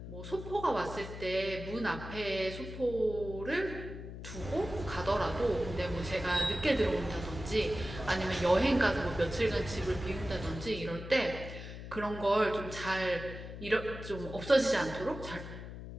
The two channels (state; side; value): noise; left; hum, 10 dB below the sound